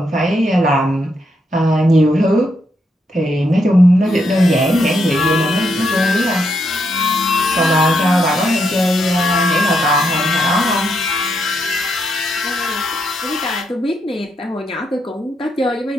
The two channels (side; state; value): both; normal; correlation 0.79